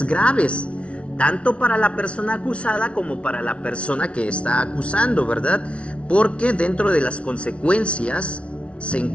graves, tanto para la persona acusada como para la persona que está acusando, ¿verdad? Porque dentro de las consecuencias se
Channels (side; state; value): right; late; 0.061 ms